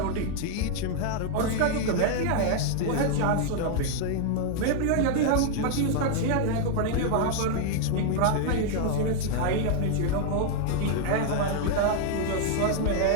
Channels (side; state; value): both; different; correlation 0.00